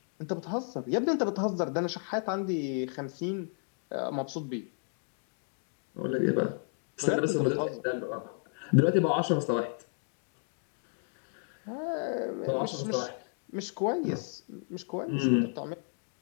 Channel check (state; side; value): silent; right; 56 dB below the other